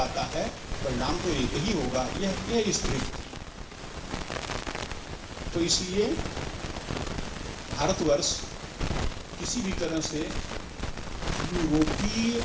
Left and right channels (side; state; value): both; identical; correlation 1.00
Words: आता है? परिणाम तो एक ही होगा। यह स्थिति। तो इसलिए भारतवर्ष किसी भी तरह से यूरोपीय